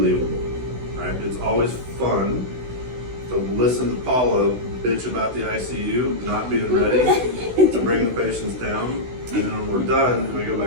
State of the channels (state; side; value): late; left; 16 ms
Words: Right? It's always fun to listen to Paula bitch about the ICU not being ready to bring the patients down, and then when we're done and we go